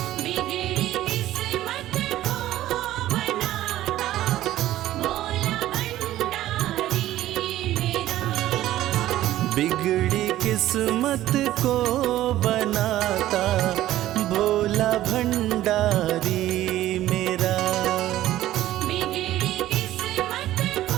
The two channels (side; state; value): left; quieter; 14.2 dB